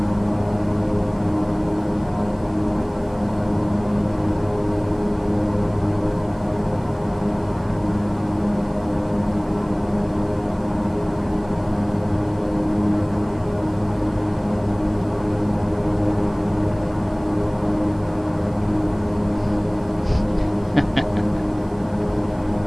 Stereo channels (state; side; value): noise; right; hiss, 30 dB below the sound